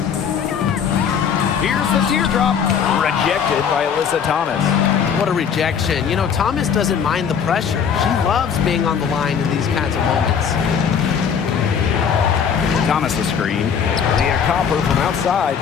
Here's the teardrop. Rejected by Alyssa Thomas. What a rejection. You know, Thomas doesn't mind the pressure. She loves being on the line in these kinds of moments. Thomas the screen. Leah Copper from outside.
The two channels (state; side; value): quieter; right; 7.3 dB